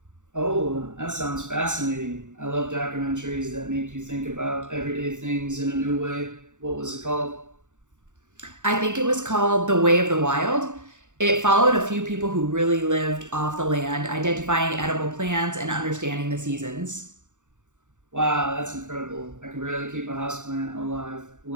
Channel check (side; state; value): left; late; 0.86 ms